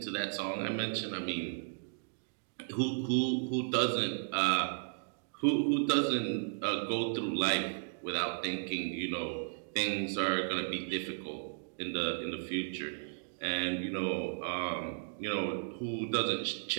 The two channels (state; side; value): silent; left; digital silence